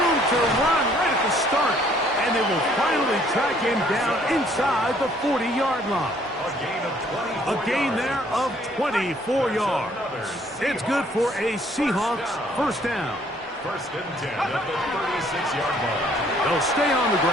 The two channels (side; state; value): both; normal; correlation 0.62